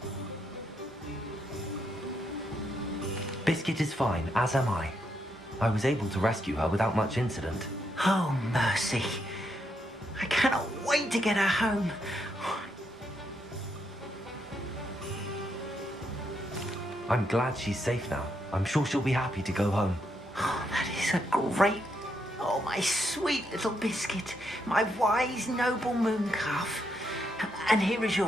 Biscuit is fine, as am I. I was able to rescue her without much incident. Oh, mercy. I cannot wait to get her home. I'm glad she's safe now. I'm sure she'll be happy to go home. Oh, that is a great... Oh, my sweet little Biscuit. My wise, noble moon calf. And here is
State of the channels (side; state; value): both; normal; correlation 0.78